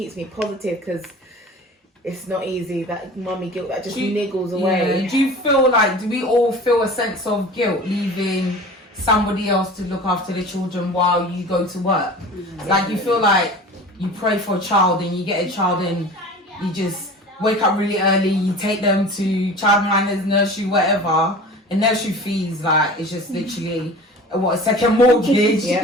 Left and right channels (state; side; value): normal; both; correlation 0.39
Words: me positive, because it's not easy, that mummy guilt that just niggles away. Do you feel like, do we all feel a sense of guilt leaving somebody else to look after the children while you go to work? Like, you feel like you pray for a child and you get a child and you just wake up really early, you take them to childminders, nursery, whatever, and nursery fees, like, it's just literally a second mortgage.